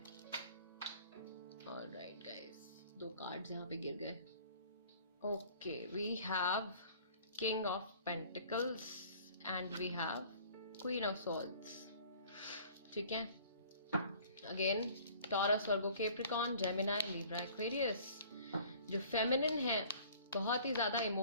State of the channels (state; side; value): inverted; both; correlation -0.51